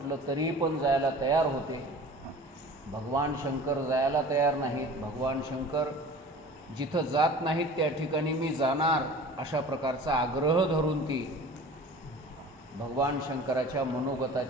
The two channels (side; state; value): both; normal; correlation 0.41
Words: तरी पण जायला तयार होते. भगवान शंकर जायला तयार नाहीत. भगवान शंकर जिथं जात नाहीत त्या ठिकाणी मी जाणार अशा प्रकारचा आग्रह धरून ती भगवान शंकराच्या